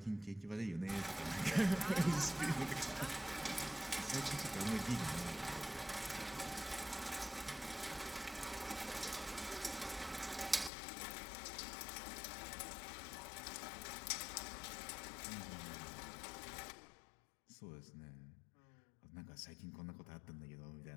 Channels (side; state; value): right; drops out; at 10.7 s